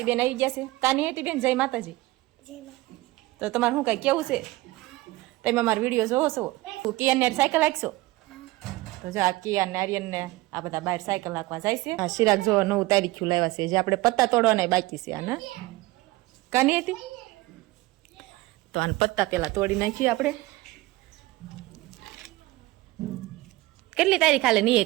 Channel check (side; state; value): left; quieter; 19.8 dB